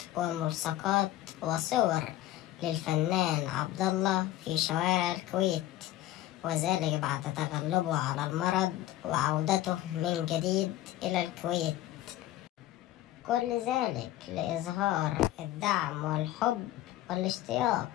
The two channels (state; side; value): quieter; right; 14.6 dB